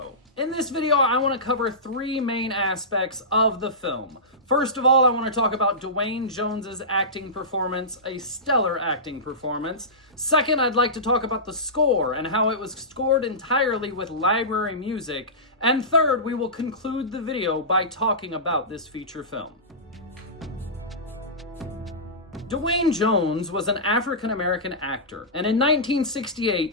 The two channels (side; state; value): both; normal; correlation -0.19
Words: In this video, I want to cover 3 main aspects of the film. First of all, I want to talk about Duane Jones's acting performance, a stellar acting performance. Second, I'd like to talk about the score and how it was scored entirely with library music. And third, we will conclude the video by talking about this feature film. Duane Jones was an African-American actor, and in